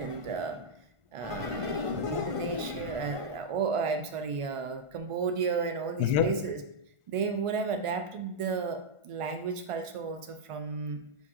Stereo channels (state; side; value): late; left; 1.5 ms